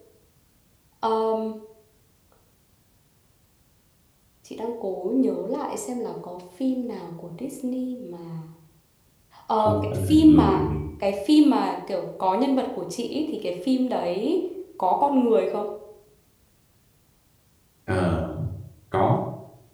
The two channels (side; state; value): both; identical; correlation 1.00